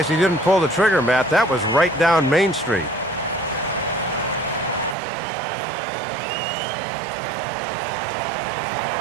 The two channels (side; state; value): left; drops out; at 5.0 s